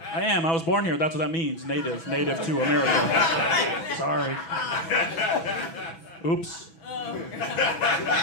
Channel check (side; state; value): right; late; 6.1 ms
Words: I am. I was born here. That's what that means. Native to America. Sorry. Oops.